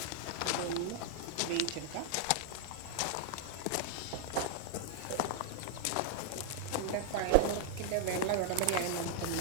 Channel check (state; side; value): different; both; correlation 0.00